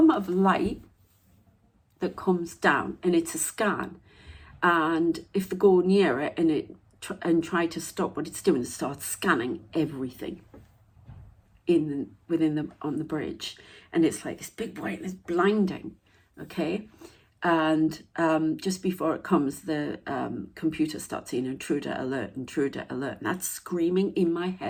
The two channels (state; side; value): identical; both; correlation 1.00